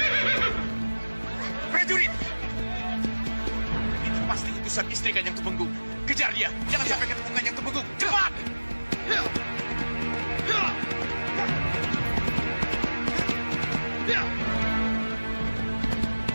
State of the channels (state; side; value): inverted; both; correlation -1.00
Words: Prajurit! Itu pasti utusan istri Kanjeng Tumenggung. Kejar dia, jangan sampai ketemu Kanjeng Tumenggung. Cepat!